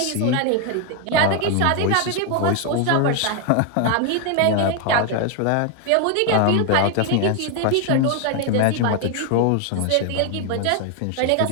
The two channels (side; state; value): both; different; correlation 0.01